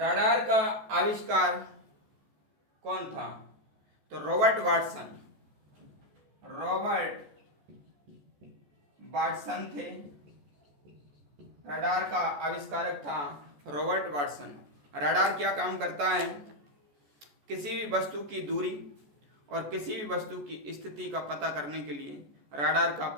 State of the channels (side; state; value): left; late; 14 ms